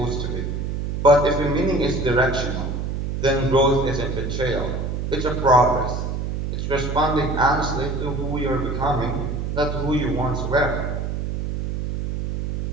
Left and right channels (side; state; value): right; noise; hum, 2 dB below the sound